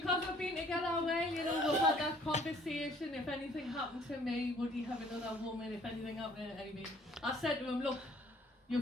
we've been together a while, you know, we've had that conversation. If anything happened to me, would he have another woman? If anything happened to anybody, I said to him, look,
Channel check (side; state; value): both; normal; correlation 0.58